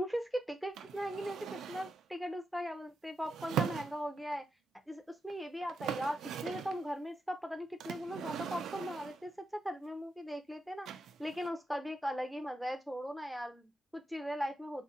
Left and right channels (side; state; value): both; normal; correlation 0.85